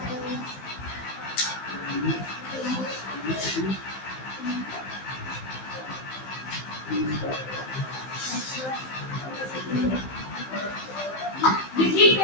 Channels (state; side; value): late; right; 15 ms